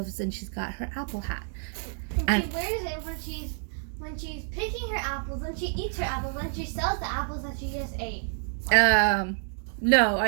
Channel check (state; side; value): silent; left; 59 dB below the other